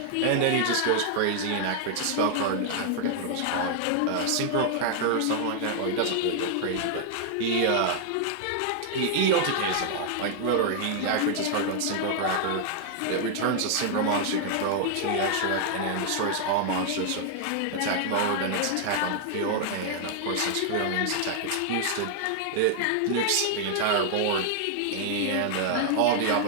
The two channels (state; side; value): different; both; correlation 0.00